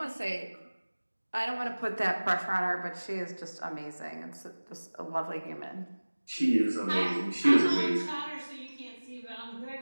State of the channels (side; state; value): both; inverted; correlation -1.00